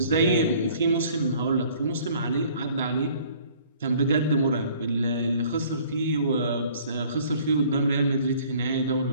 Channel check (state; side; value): inverted; both; correlation -0.55